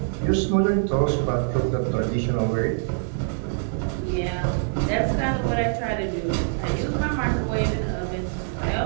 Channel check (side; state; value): left; silent; digital silence